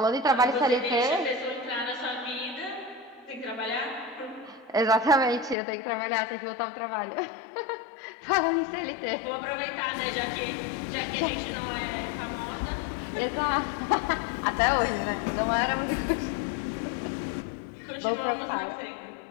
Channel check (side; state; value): right; drops out; at 5.6 s